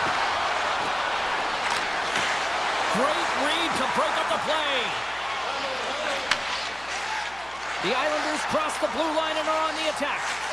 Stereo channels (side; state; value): left; noise; hum, 22 dB below the sound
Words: Great read to break up the play. The Islanders cross the blue line and are on the attack.